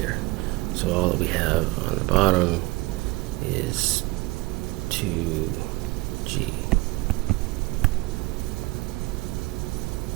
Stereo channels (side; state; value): left; quieter; 22.4 dB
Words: So all that we have on the bottom is 2g.